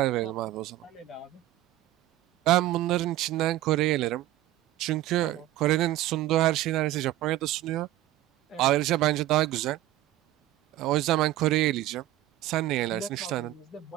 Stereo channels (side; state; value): left; quieter; 15.1 dB